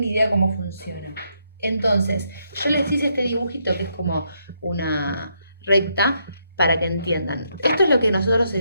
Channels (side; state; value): both; inverted; correlation -0.76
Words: idea de cómo funciona. Entonces, yo les hice este dibujito que es como una recta para que entiendan. Esto es lo que nosotros